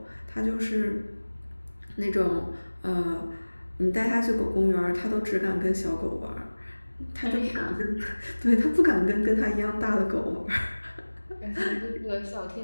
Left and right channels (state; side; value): inverted; both; correlation -1.00